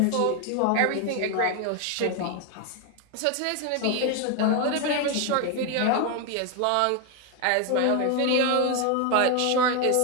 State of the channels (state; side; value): different; both; correlation 0.01